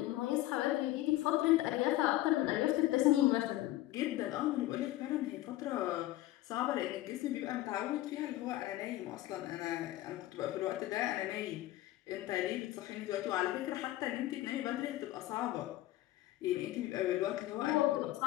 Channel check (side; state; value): right; quieter; 15.9 dB